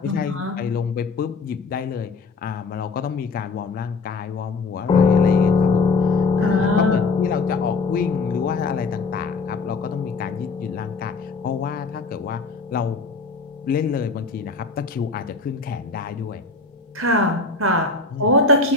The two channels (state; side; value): quieter; right; 4.1 dB